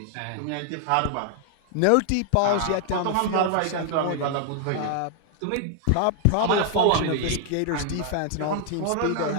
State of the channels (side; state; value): both; different; correlation 0.00